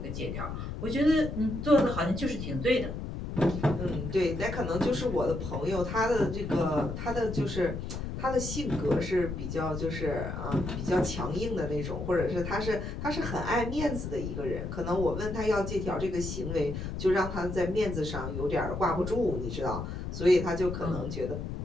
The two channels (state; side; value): noise; left; rumble, 5 dB below the sound